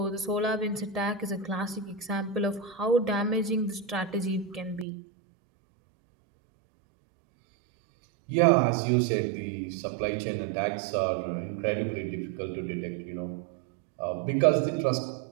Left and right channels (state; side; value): drops out; left; at 4.9 s